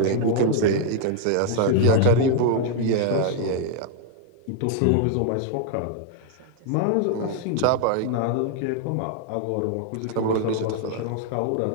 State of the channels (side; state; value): both; different; correlation 0.00